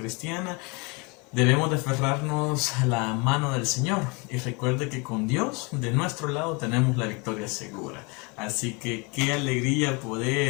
Debemos de aferrarnos a la mano del Señor y recuerde que con Dios de nuestro lado tenemos la victoria segura. Así que qué alegría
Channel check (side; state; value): right; quieter; 29.4 dB